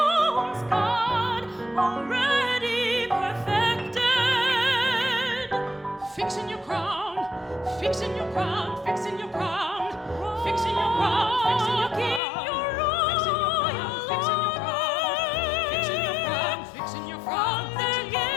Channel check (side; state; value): right; drops out; at 12.2 s